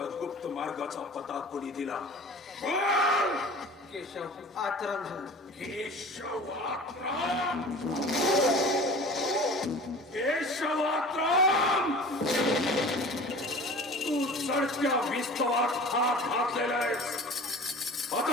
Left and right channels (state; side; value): normal; both; correlation 0.40